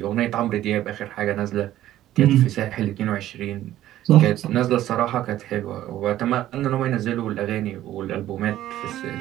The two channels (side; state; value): left; quieter; 13.4 dB